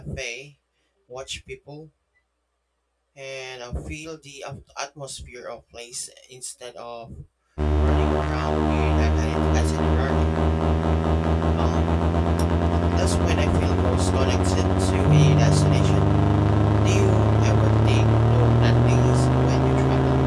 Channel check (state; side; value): identical; both; correlation 1.00